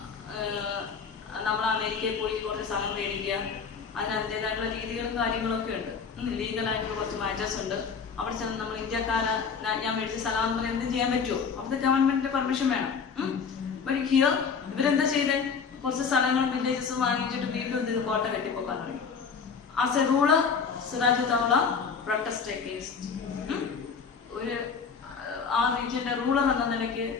നമ്മൾ അമേരിക്കയിൽ പോയി കുറച്ച് സ്ഥലം മേടിക്കുക, അതിന് അതിൻ്റെതായിട്ടുള്ള രീതികളും കാര്യങ്ങളൊക്കെ ഉണ്ട്. ലീഗലായിട്ടുള്ള കുറച്ച് മാറ്റേഴ്സ് ഉണ്ട്. അവിടെ ചെന്ന് നമ്മൾ ഇന്ത്യക്കാരെ ഞാൻ മേടിച്ച സ്ഥലം എന്ന് പറയാൻ എന്തും ചെയ്യാൻ പറ്റുമോ? അവിടുത്തെ ഗവൺമെന്റിന്റെ പെർമിഷൻ വേണം. ബട്ട് ഹിയർ ഇവരെന്താ ചെയ്തേ, കുറച്ച് സ്ഥലങ്ങളും വില്ലേജസും വാങ്ങിച്ചിട്ട് വീണ്ടും ഇത് കോട്ട കെട്ടിപ്പോക്കാൻ തുടങ്ങി. As a ruler Siraj Daula protest against, ഒരു ആ റീജിയന്റെ റൂളർ എന്ന നിലയ്ക്ക്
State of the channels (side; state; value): right; quieter; 5.9 dB